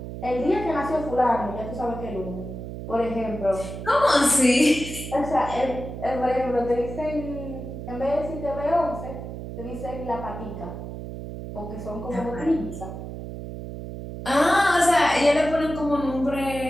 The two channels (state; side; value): noise; right; hum, 9 dB below the sound